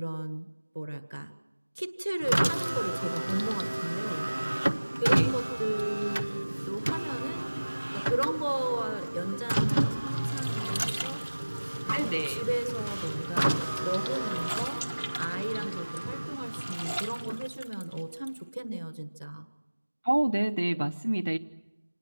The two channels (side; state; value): both; inverted; correlation -1.00